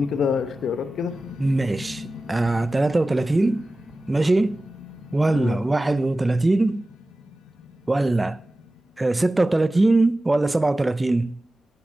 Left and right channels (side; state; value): both; normal; correlation 0.96